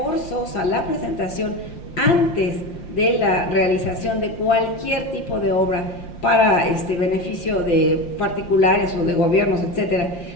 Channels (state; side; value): late; right; 5.7 ms